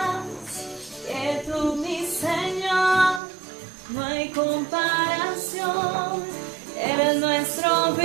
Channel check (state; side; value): drops out; left; at 3.2 s